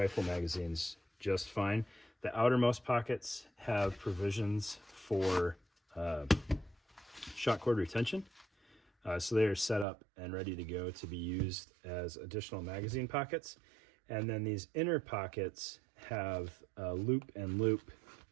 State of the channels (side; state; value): left; drops out; at 9.9 s